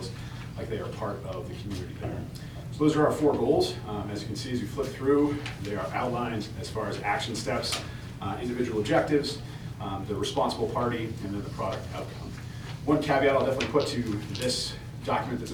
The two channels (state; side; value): identical; both; correlation 1.00